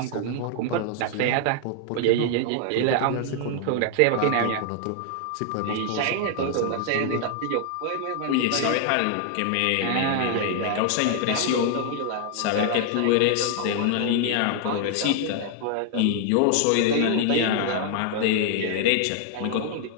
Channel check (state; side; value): different; both; correlation 0.00